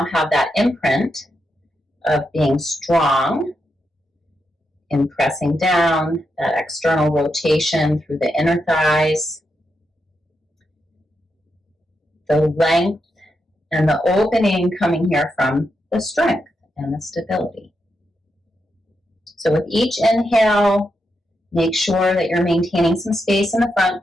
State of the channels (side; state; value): both; normal; correlation 0.84